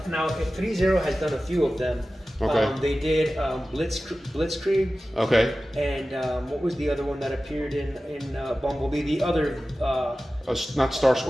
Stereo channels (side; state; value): both; normal; correlation 0.95